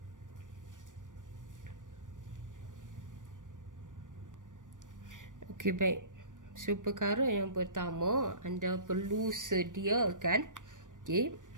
Okay, baik. So perkara yang pertama, anda perlu sediakan, okay,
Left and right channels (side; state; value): left; late; 0.87 ms